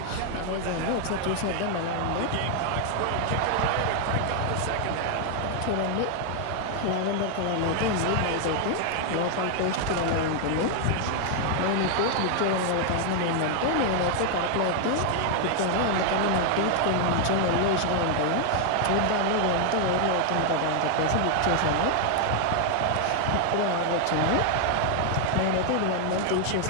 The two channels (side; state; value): both; different; correlation 0.00